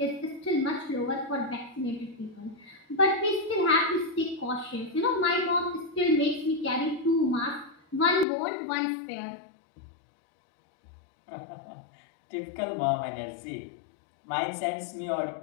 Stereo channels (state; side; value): drops out; right; at 8.2 s